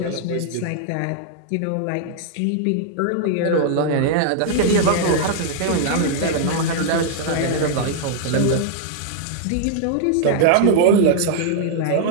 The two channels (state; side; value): different; both; correlation -0.01